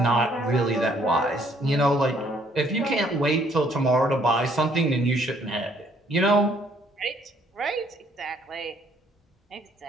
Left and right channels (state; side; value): normal; both; correlation 0.65